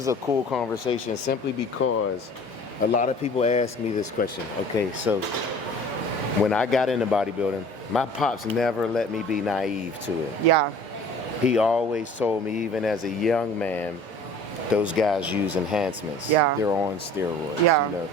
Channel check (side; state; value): both; normal; correlation 0.46